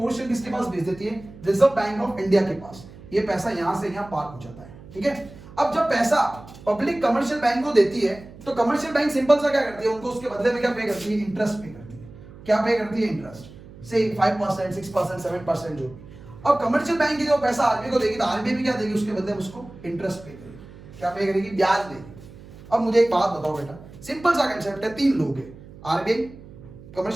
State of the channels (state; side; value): noise; right; hum, 18 dB below the sound